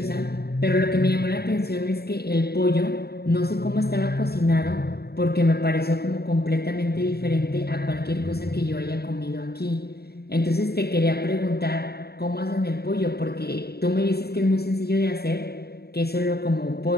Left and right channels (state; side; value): late; right; 0.46 ms